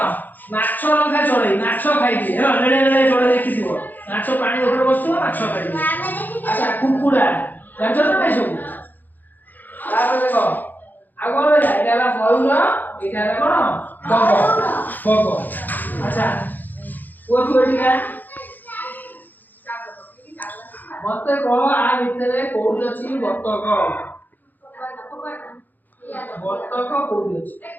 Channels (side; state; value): right; late; 0.085 ms